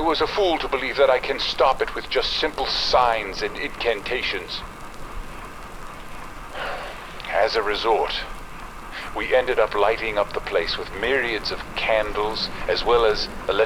a fool to believe that I can stop it with just simple signs and incantations. As a resort, we ended up lighting up the place with myriads of candles as well as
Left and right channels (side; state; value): both; identical; correlation 1.00